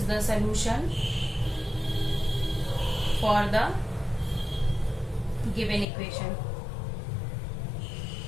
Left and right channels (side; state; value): right; drops out; at 5.9 s